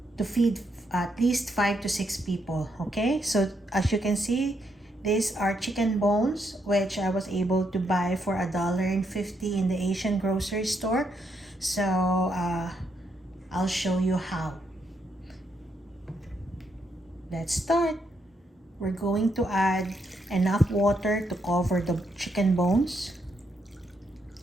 to feed at least 5 to 6 people. Okay, so as you can see, these are chicken bones, which I was able to buy for $1.50 in the Asian grocery store. So I'll show you how. Let's start. We're going to add enough water to cover the chicken bones.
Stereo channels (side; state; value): both; normal; correlation 0.78